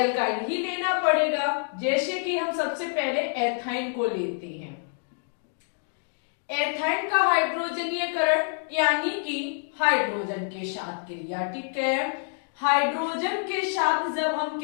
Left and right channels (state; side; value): silent; right; 57 dB below the other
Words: ही लेना पड़ेगा। जैसे कि हम सबसे पहले एथाइन को लेते हैं। एथाइन का हाइड्रोजनीयकरण यानी कि हाइड्रोजन के साथ क्रिया, ठीक है। हाइड्रोजन के साथ जब हम